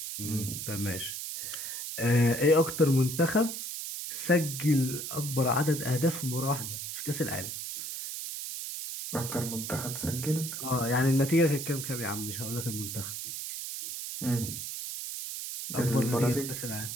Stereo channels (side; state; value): right; noise; hiss, 6 dB below the sound